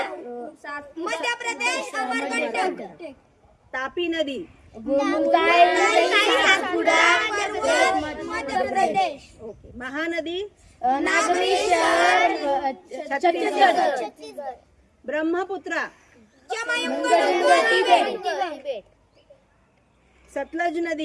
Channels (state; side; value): identical; both; correlation 1.00